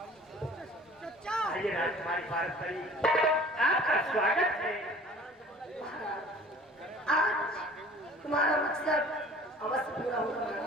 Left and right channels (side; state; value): both; normal; correlation 0.48